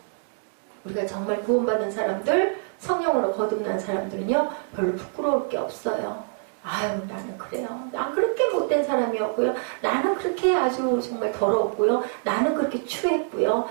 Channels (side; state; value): left; silent; 60 dB below the other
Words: 우리가 정말 구원받은 사람들 성령으로 거듭난 사람들은요 별로 부끄러울 게 없어요. 아유 나는 그래요. 난 그렇게 못된 사람이었고요. 나는 그렇게 아주 정말 더러웠고요. 나는 그렇게 추했고요.